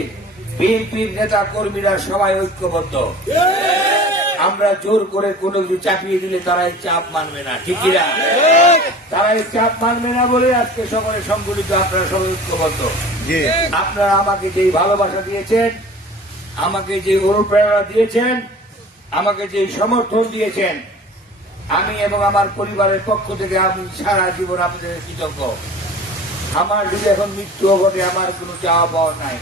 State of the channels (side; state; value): both; normal; correlation 0.42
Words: বিএনপির নেতা কর্মীরা সবাই ঐক্যবদ্ধ। আমরা জোর করে কোনো কিছু চাপিয়ে দিলে তারা এই চাপ মানবে না, ঠিক কিনা? তারা এই চাপ মানবে না বলে আজকে সকলে সংগঠিত, আপনারা সবাই ঐক্যবদ্ধ। আপনারা আমাকে যে ভালোবাসা দিয়েছেন, আমাকে যে অনুপ্রেরণা দিয়েছেন, আমাকে যে সমর্থন দিয়েছেন, আমি এবং আমার পরিবারের পক্ষ থেকে আমি সারা জীবন আপনাদের কৃতজ্ঞ। আমার যদি এখন মৃত্যু ঘটে আমার কোনো চাওয়া পাওয়া নাই,